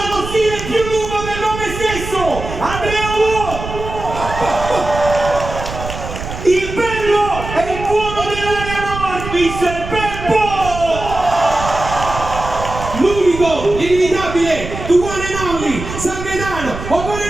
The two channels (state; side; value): noise; right; rumble, 9 dB below the sound